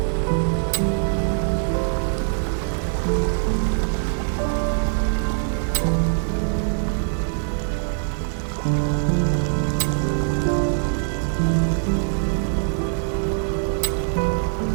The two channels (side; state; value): left; silent; 64 dB below the other